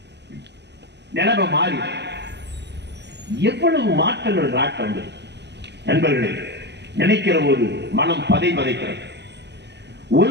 நிலைமை மாறி எவ்வளவு மாற்றங்கள் நாட்டம் நண்பர்களே, நினைக்கிற போது மனம் பதைக்கிறது.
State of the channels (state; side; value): late; left; 0.50 ms